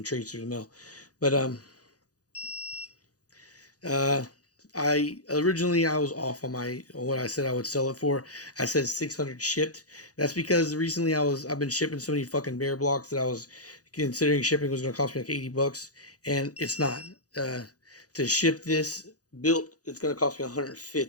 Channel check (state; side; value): late; right; 0.67 ms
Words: trades through the mail, but uh, I was off on what I said I would sell it for. I said 600 shipped. That's because recently I've been shipping so many fucking bear blocks that I was considering shipping was going to cost me like $80, and it's not. To ship this built, it's going to cost me